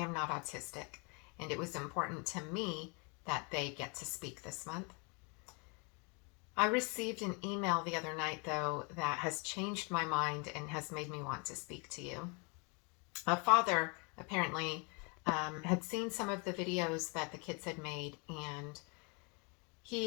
not autistic, and it was important to me that they get to speak this month. I received an email the other night, though, that has changed my mind and has made me want to speak to you. A father apparently had seen some of the videos that the kids had made, and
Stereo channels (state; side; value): quieter; right; 33.2 dB